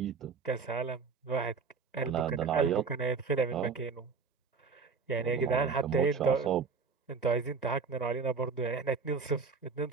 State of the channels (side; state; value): left; quieter; 5.1 dB